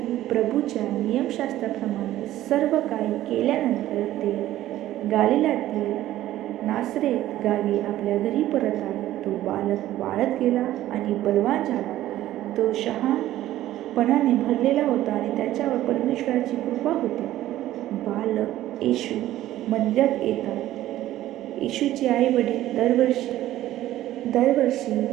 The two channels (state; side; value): quieter; left; 14.1 dB